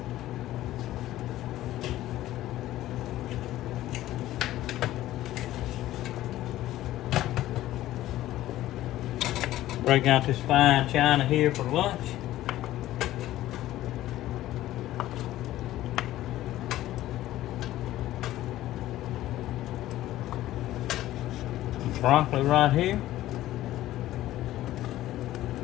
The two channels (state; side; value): quieter; right; 14.7 dB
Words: Break out this fine china here for lunch. Broccoli right here.